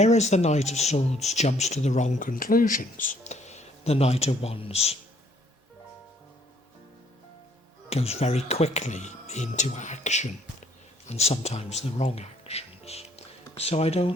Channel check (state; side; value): normal; both; correlation 0.63